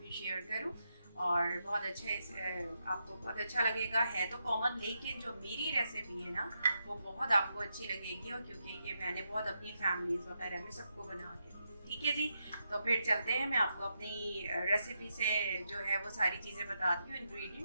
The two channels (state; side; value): inverted; both; correlation -0.83